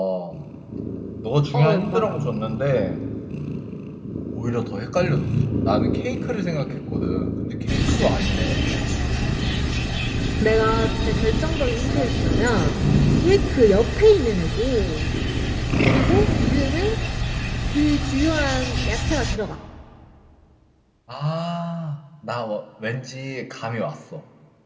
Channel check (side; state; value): both; identical; correlation 1.00